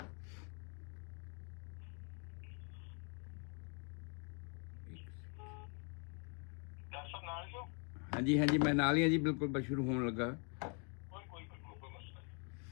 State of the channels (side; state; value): right; quieter; 38.6 dB